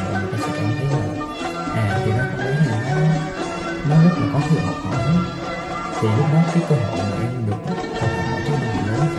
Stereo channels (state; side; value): identical; both; correlation 1.00